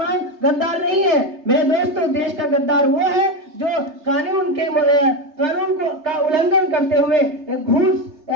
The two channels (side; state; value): left; late; 3.3 ms